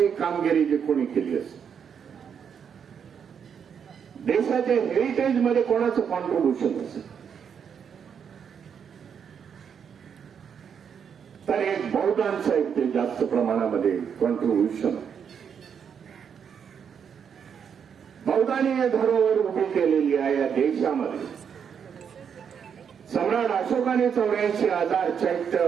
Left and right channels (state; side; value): quieter; left; 7.4 dB